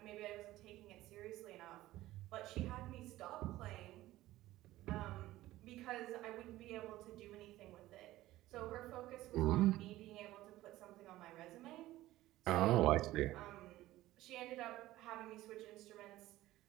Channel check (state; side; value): quieter; left; 16.2 dB